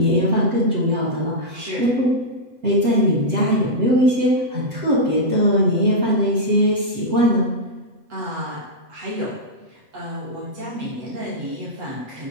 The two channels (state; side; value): late; left; 8.0 ms